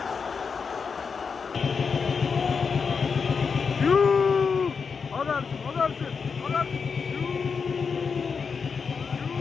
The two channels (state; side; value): quieter; right; 5.6 dB